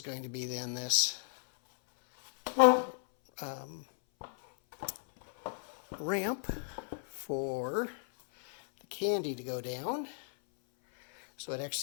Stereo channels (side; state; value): right; silent; 55 dB below the other